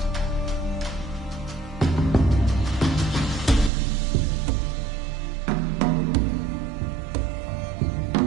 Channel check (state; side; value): drops out; left; at 3.7 s